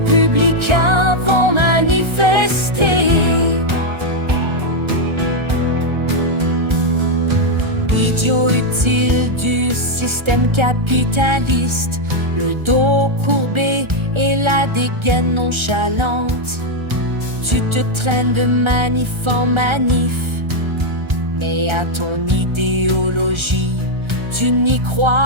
vont manifester. Idiots utiles du système capitaliste, le dos courbé et la dégaine nonchalante. Tu te traînes de manif en manif, mais à ton idéologie, tu n'y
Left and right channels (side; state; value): left; late; 1.3 ms